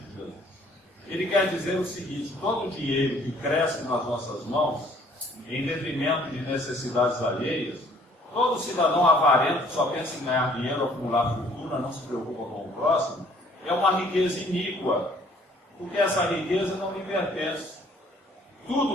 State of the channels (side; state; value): both; normal; correlation 0.59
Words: Jesus. Ele quer dizer o seguinte: todo dinheiro que cresce nas nossas mãos, em detrimento de necessidades alheias, todo cidadão avarento que só pensa em ganhar dinheiro, acumular fortuna, não se preocupa com o próximo, é uma riqueza iníqua, porque essa riqueza não lhe pertence.